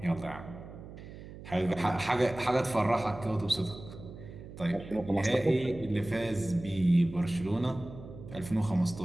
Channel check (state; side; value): noise; right; hum, 14 dB below the sound